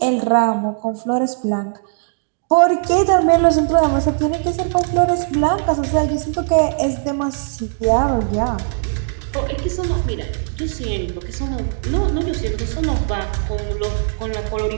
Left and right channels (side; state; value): left; silent; digital silence